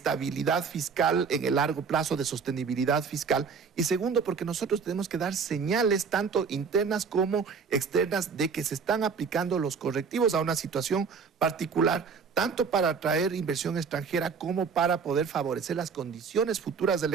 fiscal en el largo plazo, de sostenibilidad fiscal. Y segundo, porque nosotros tenemos que dar señales tanto internas como externas de que se están aplicando los correctivos a una situación particular, tanto para atraer inversión extranjera como para poder favorecer las condiciones futuras del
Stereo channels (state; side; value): quieter; left; 5.7 dB